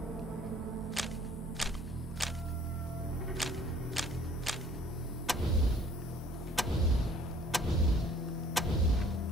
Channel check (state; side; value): normal; both; correlation 0.56